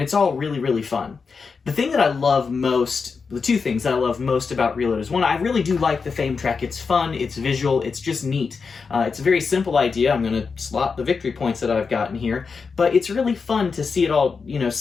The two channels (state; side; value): quieter; right; 5.1 dB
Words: it's all really, really fun. The thing that I love most, the two things that I love most about Reload is, one, I really do like the fame track. It's fun, it's visual, it's just neat. It's a very simple idea. I'm going to slot the victory points that I've gotten here, but it's really fun to see it all,